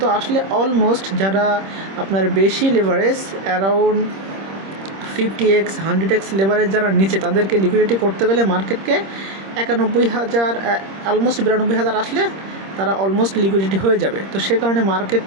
আসলে অলমোস্ট যারা আপনার বেশি leverage, around 50x 100x leverage যারা নিচে, তাদেরকে লিকুইডিটি করতে গেলে মার্কেটকে 91,000 অলমোস্ট 92,000 আসলে তারা অলমোস্ট লিকুইডিটি হয়ে যাবে। তো সে কারণে মার্কেট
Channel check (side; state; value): left; late; 26 ms